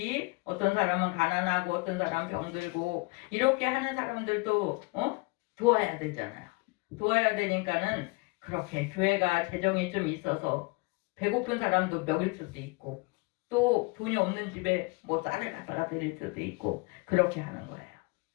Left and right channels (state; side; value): quieter; right; 27.4 dB